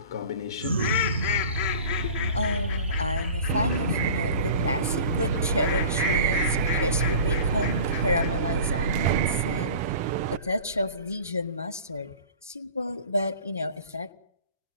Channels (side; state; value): both; inverted; correlation -0.41